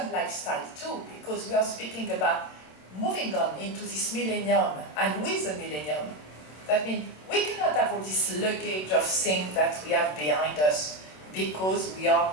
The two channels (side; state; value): right; late; 27 ms